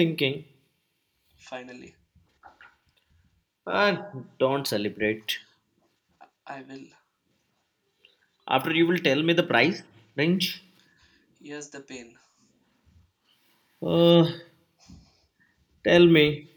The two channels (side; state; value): both; identical; correlation 1.00